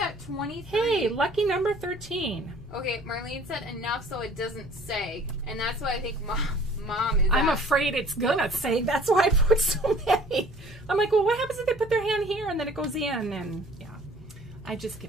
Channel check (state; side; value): normal; both; correlation 0.52